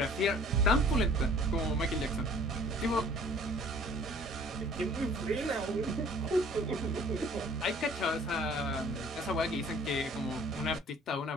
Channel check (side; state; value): both; normal; correlation 0.52